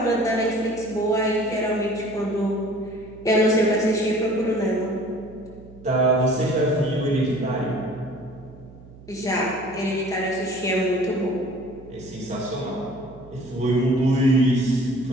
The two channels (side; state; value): right; noise; hum, 20 dB below the sound